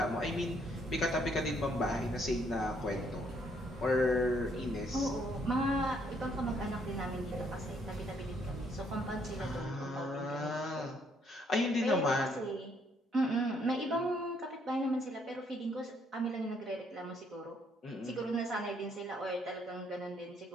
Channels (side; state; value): both; normal; correlation 0.69